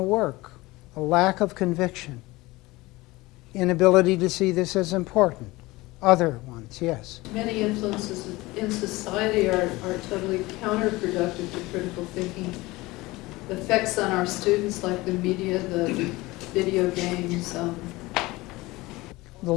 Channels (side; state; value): right; quieter; 20.8 dB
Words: A lack of conviction. Inability to see this as important. Other ones, yes. Many influences in society are totally counterproductive to critical thinking. The effects on our students, like the media, the video games. The